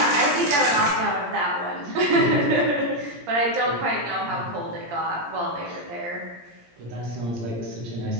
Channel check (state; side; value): late; left; 17 ms